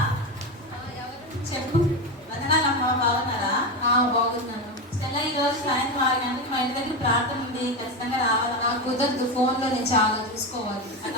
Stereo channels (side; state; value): both; normal; correlation 0.16